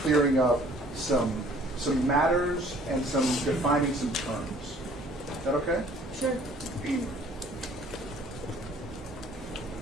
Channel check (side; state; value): both; normal; correlation 0.55